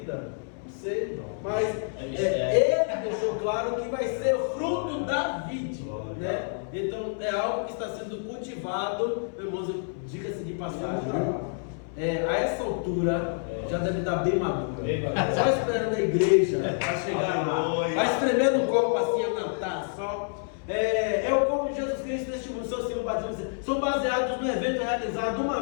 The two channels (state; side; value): silent; right; 59 dB below the other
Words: Não sei. Mas ele deixou claro que vai ser o fruto da vide, né? Então é algo que está sendo cultivado, irmãos, diga-se de passagem. A essa altura já deve estar bem maduro. Só esperando a igreja para chegar lá. Vai espremendo o copo assim, na taça. É o corpo de Jesus Cristo neste mundo. Seus símbolos batismos são baseados no evento realizado